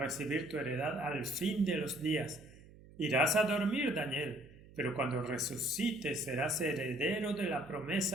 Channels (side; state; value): right; noise; hum, 21 dB below the sound